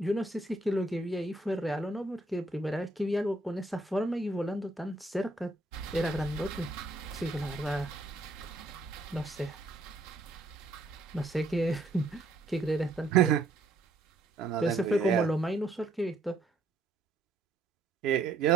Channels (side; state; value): left; quieter; 3.0 dB